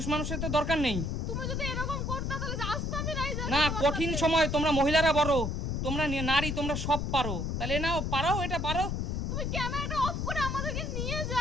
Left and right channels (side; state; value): left; noise; rumble, 1 dB below the sound